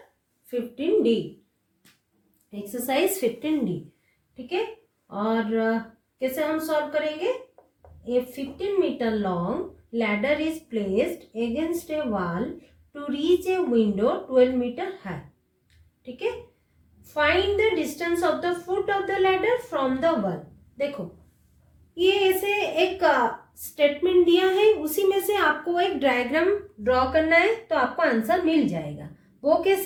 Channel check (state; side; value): identical; both; correlation 1.00